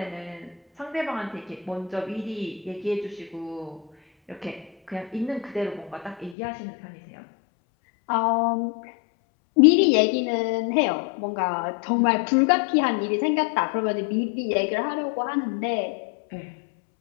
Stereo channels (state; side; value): drops out; right; at 6.4 s